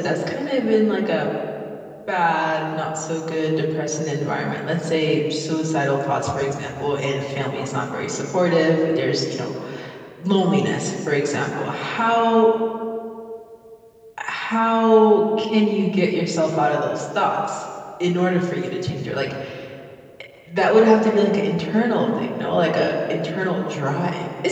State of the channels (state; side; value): identical; both; correlation 1.00